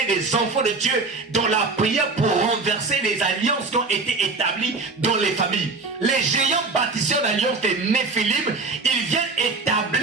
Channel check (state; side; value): quieter; left; 3.8 dB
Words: des enfants de Dieu dans la prière pour renverser les alliances qui ont été établies dans les familles. Les géants bâtisseurs d'alliances des Néphilim, ils viennent